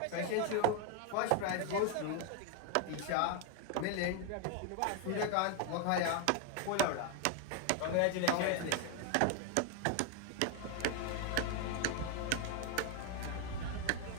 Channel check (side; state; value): both; different; correlation 0.01